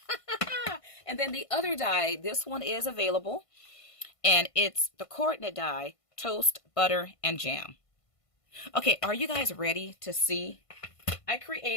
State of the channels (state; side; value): late; right; 1.5 ms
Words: And then the other die, this one is available. And it's the coordinate die, toast, butter, and jam. Okay, are you guys ready to see? I